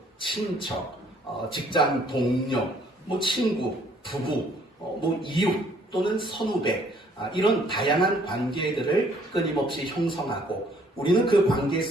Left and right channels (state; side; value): normal; both; correlation 0.62